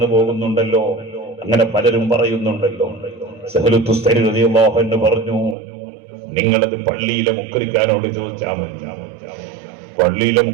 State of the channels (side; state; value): left; drops out; at 5.6 s